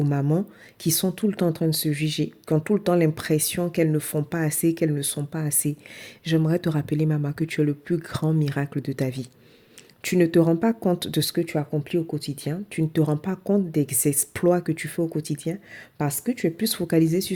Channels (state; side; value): identical; both; correlation 1.00